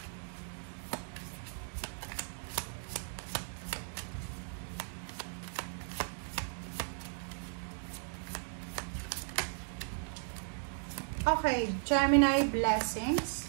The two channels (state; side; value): silent; left; digital silence